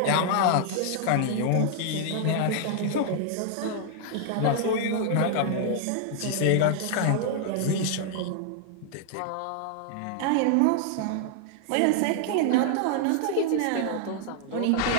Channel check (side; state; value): both; different; correlation 0.00